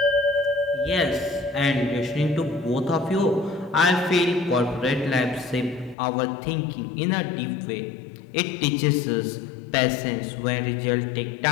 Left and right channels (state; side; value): drops out; right; at 6.0 s